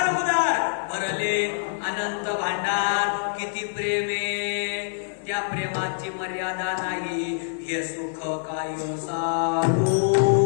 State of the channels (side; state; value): right; silent; digital silence